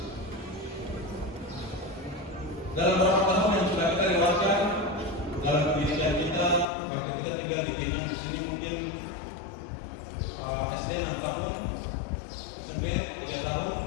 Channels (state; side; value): drops out; right; at 6.7 s